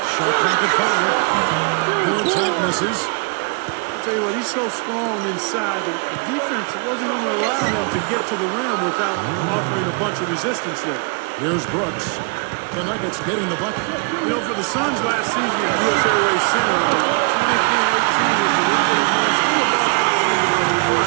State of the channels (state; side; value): quieter; left; 34.2 dB